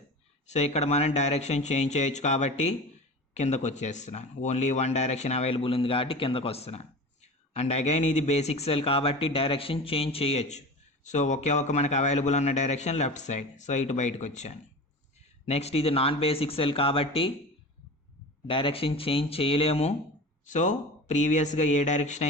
సో ఇక్కడ మనం డైరెక్షన్ చేంజ్ చేయొచ్చు కాబట్టి కిందకు వచ్చేస్తున్నాను. ఓన్లీ వన్ డైరెక్షన్ అవైలబుల్ ఉంది కాబట్టి కిందకు వస్తున్నాను. అండ్ అగైన్ ఇది బేసిక్ సెల్ కాబట్టి డైరెక్షన్ చేంజ్ చేయొచ్చు. సో ఒకే ఒక మనకు అవైలబుల్ ఉన్న డైరెక్షన్ లెఫ్ట్ సైడ్. సో ఇటు బయటకు వచ్చాను. నెక్స్ట్ ఇది నాన్ బేసిక్ సెల్ కాబట్టి డైరెక్షన్ చేంజ్ చేయలేము. సో ప్రీవియస్గా ఏ డైరెక్షన్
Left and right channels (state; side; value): normal; both; correlation 0.33